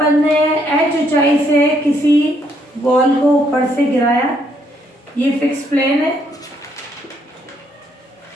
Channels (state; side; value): normal; both; correlation 0.71